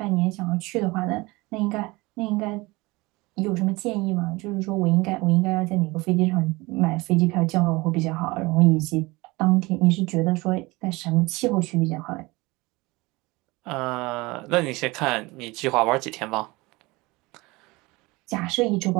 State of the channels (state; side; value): quieter; left; 22.9 dB